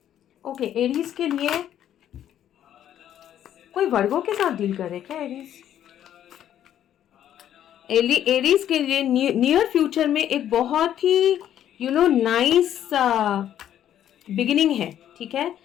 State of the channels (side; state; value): right; quieter; 10.8 dB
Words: ओके, एरीज के लिए कोई वर्गों के साथ डील कर रहे क्या एरीज? एरीज के लिए नियर फ्यूचर में एक बहुत ही नाइस बिगिनिंग है, ठीक है,